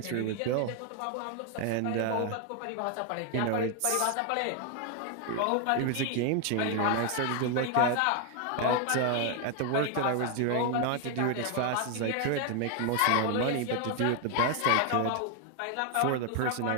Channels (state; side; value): different; both; correlation 0.01